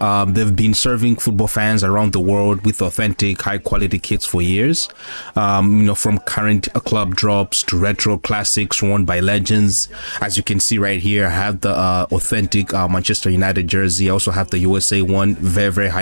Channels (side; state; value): both; inverted; correlation -1.00